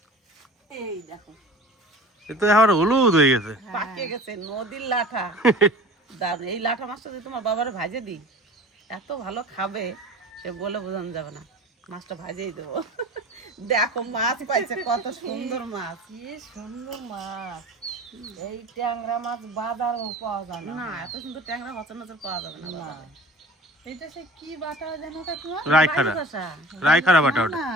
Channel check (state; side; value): normal; both; correlation 0.41